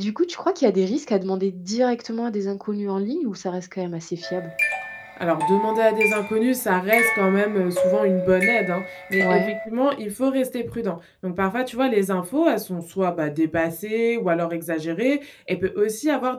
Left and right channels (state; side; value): identical; both; correlation 1.00